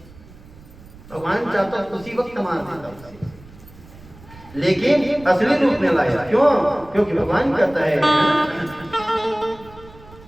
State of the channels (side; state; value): right; noise; rumble, 21 dB below the sound